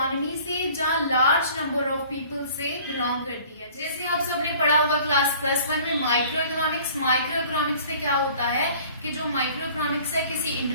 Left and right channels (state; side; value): inverted; both; correlation -0.50